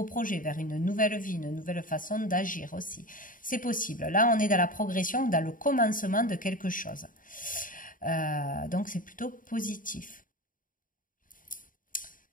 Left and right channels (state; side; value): late; right; 0.39 ms